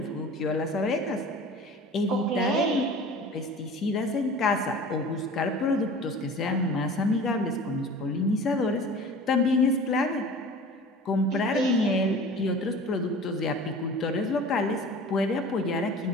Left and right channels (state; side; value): normal; both; correlation 0.41